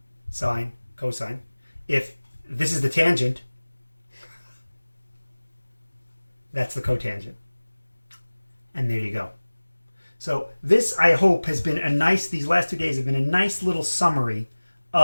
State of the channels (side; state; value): both; inverted; correlation -1.00